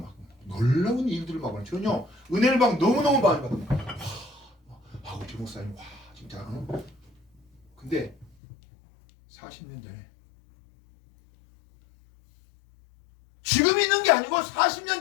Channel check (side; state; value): right; drops out; at 8.3 s